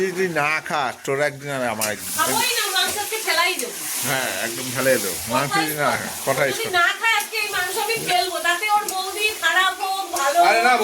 যদি না খাস তোর একদিন আর আমার একদিন। খাবোই না, মাংস আজকে ফেলাই দেবো। হ্যাঁ একদম ফেলাই দেবো মাংস যদি না খায়। কথাই যদি না খায় আজকে এই মাংস আমি ফেলবো, তাতে ওর বৌদি খারাপ হোক ভালো। আরে না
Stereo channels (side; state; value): both; identical; correlation 1.00